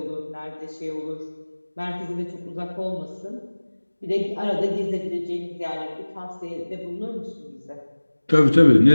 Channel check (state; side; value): inverted; both; correlation -1.00